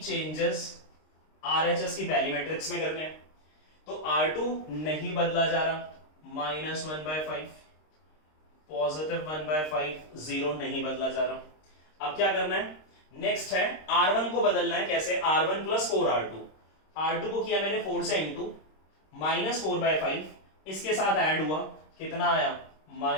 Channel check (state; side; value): late; right; 26 ms